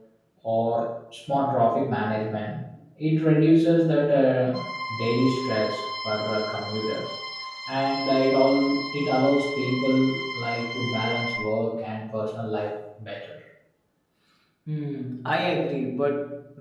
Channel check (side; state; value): both; identical; correlation 1.00